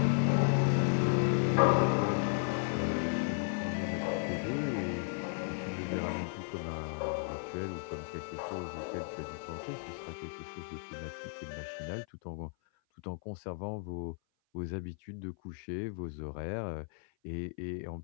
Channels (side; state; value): right; silent; 55 dB below the other